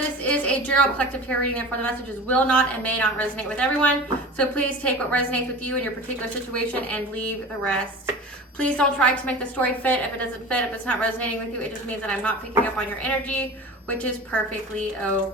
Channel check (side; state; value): both; normal; correlation 0.35